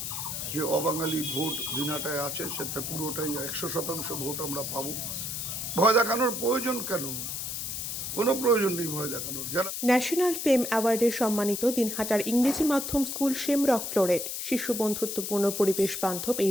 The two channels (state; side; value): noise; left; hiss, 4 dB below the sound